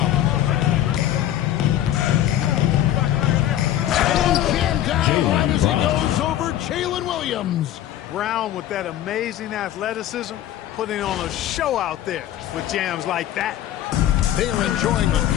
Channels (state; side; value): quieter; right; 12.2 dB